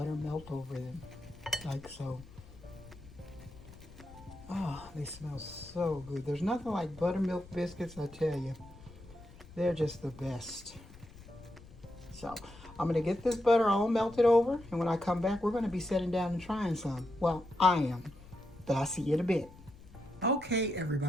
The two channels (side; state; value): left; noise; rumble, 20 dB below the sound